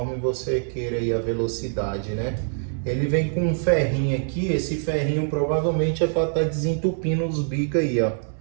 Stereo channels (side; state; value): left; silent; digital silence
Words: você queira aí a velocidade, né? Ele vem com um ferrinho aqui, esse ferrinho provavelmente é para estar desentupindo os bicos aí, ó.